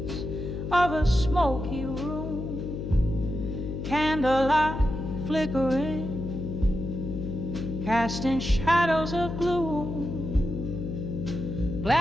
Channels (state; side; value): noise; left; hum, 5 dB below the sound